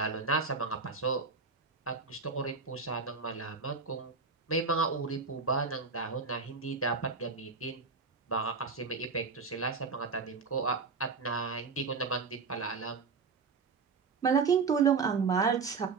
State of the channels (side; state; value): left; quieter; 4.8 dB